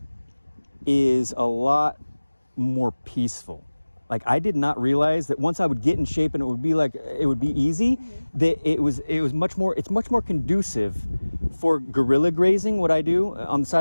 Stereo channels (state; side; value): inverted; both; correlation -1.00